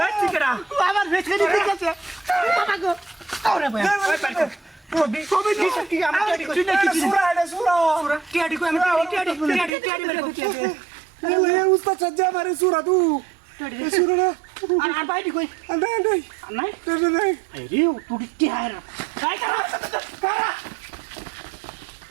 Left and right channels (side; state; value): left; drops out; at 9.7 s